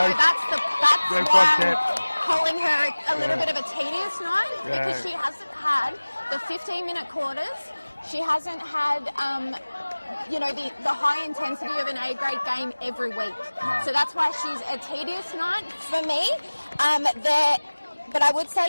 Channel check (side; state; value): both; inverted; correlation -1.00